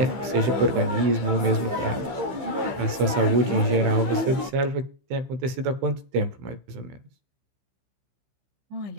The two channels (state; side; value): late; left; 15 ms